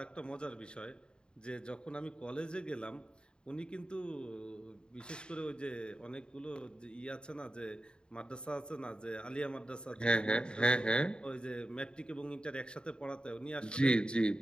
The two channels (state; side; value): late; right; 0.050 ms